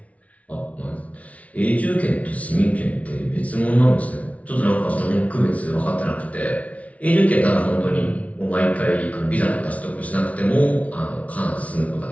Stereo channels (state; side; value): late; right; 0.067 ms